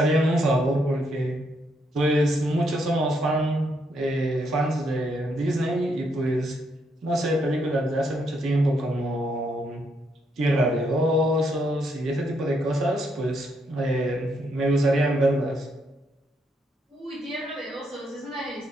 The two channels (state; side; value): normal; both; correlation 0.76